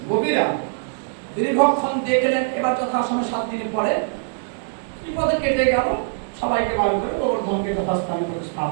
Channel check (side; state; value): left; silent; digital silence